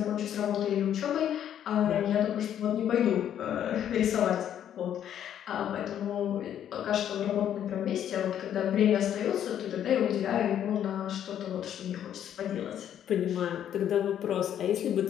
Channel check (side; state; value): right; quieter; 10.1 dB